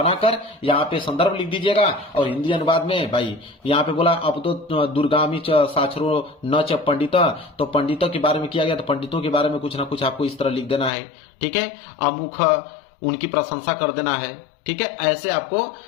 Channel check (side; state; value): right; drops out; at 10.9 s